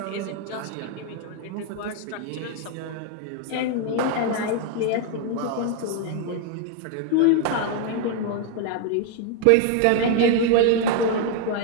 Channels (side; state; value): both; different; correlation 0.01